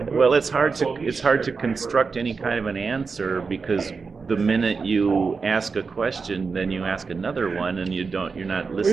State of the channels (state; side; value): quieter; left; 4.9 dB